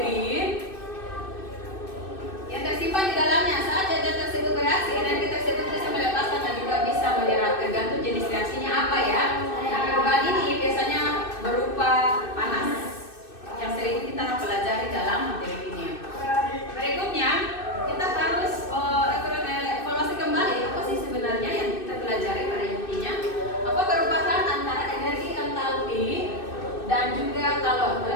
dan juga kalor.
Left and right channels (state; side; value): late; right; 2.6 ms